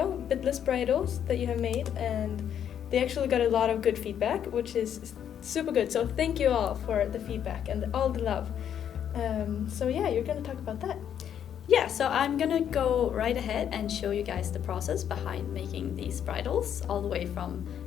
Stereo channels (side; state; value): right; quieter; 9.3 dB